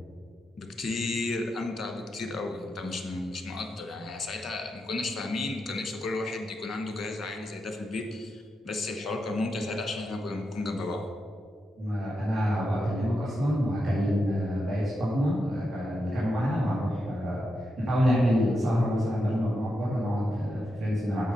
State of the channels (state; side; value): normal; both; correlation 0.86